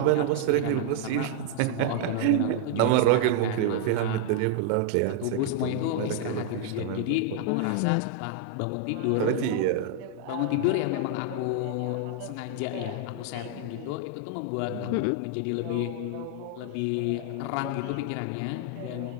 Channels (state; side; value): different; both; correlation 0.00